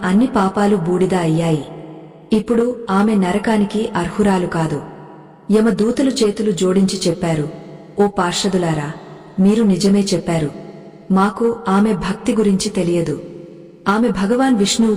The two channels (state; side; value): identical; both; correlation 1.00